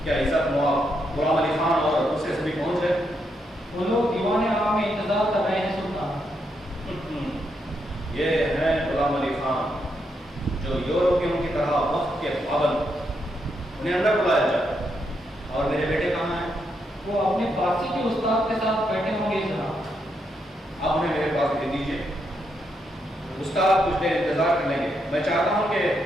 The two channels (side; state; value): both; normal; correlation 0.80